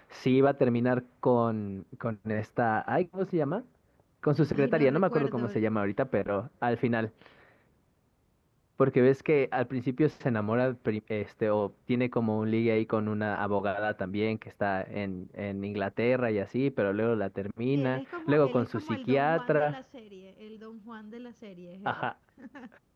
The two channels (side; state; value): both; identical; correlation 1.00